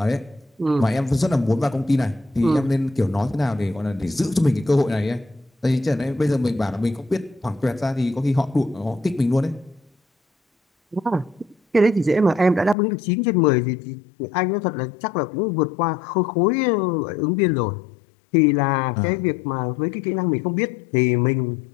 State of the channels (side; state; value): right; drops out; at 12.8 s